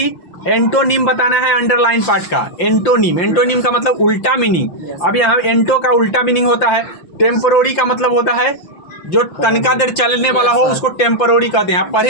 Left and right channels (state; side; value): late; right; 5.8 ms